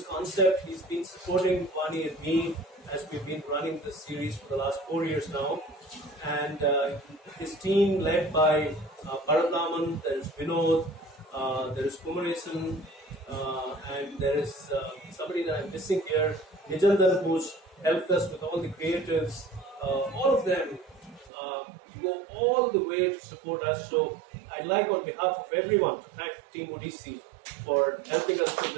concept. He's been supporting Vani and me as we've been running this series for the last 4 years now. And his team led by Bharataman, there is Vinod, there is Kumaresan, and there is somebody that I'm missing here, Nijandan, who's helped us with all the creatives. All of them go all the way to support us. So I'd like on behalf of everyone to thank Team Odyssey for helping us put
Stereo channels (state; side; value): drops out; left; at 21.3 s